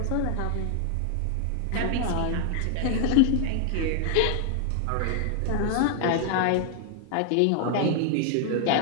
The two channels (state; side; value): different; both; correlation 0.00